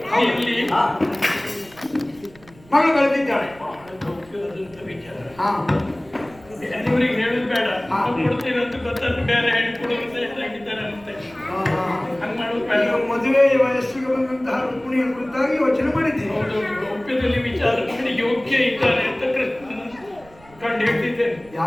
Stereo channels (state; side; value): noise; right; rumble, 25 dB below the sound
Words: ಇಲ್ಲಿ ಮಗಳು ಬೆಳೆದಿದ್ದಾಳೆ. ಬೇರೆಯವರಿಗೆ ಹೇಳುದು ಬೇಡ, ಕೊಡ್ತೀರಂತ ಗೊತ್ತಂತ ಬೇರೆ ಹೆಣ್ಣು ಕೊಡುವ ತಯಾರಾಗಿದ್ದಾರೆ ಅಂತೆ. ಹಂಗ ಮಾಡೋದು ಬೇಡ. ಮದುವೆ ವಯಸ್ಸಿಗೆ ಬಂದಂತಹ ರುಕ್ಮಿಣಿಯ ಕುರಿತಾಗಿ ಯೋಚನೆ ಮಾಡಿದ್ದೀನಿ. ಒಪ್ಪಿದಲ್ಲಿ ವಿಚಾರ ಮಾಡಿ ಯೋಗ್ಯ ಇದ್ದಾರೆ ಅಂತ ಕೃಷ್ಣನ ಕಂಡು ಹೇಳ್ತಿದ್ದೇನೆ.